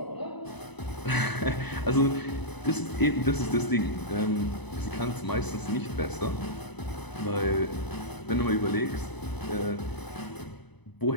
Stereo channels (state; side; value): late; right; 0.99 ms